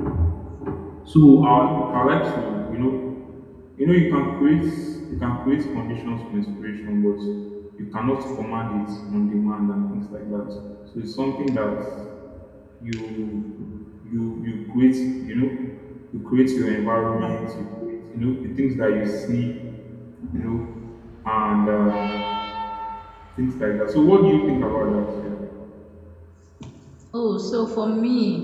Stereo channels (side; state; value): both; identical; correlation 1.00